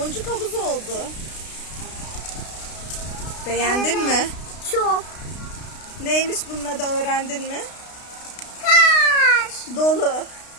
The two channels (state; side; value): late; right; 32 ms